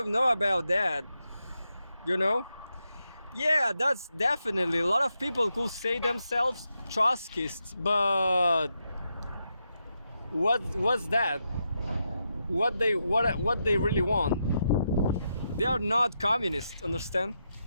know about that, you know? Yeah, that's definitely a lot of people could say themselves Trotskyists, but what's that? What they really want? They are not communists, understand?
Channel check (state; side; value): inverted; both; correlation -0.85